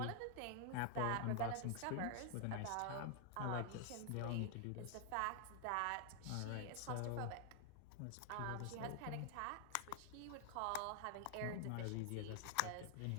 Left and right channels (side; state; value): both; different; correlation 0.00